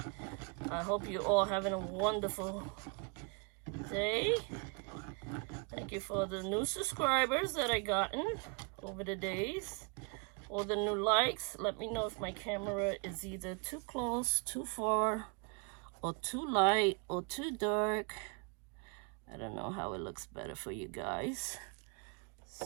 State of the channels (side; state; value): left; quieter; 34.3 dB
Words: I hope you all having a wonderful day. Thank you for the new subscribers that I gotten over the days. All the new likes. Let me know if my camera is either too close, too far, or too light, or too dark. I don't know how it looks better for you guys.